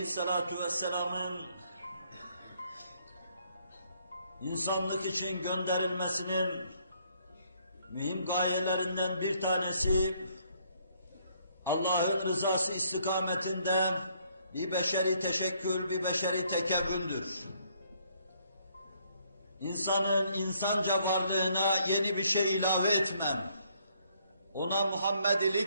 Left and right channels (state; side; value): inverted; both; correlation -0.68